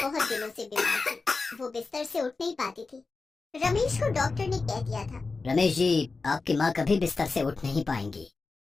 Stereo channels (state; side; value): quieter; right; 4.0 dB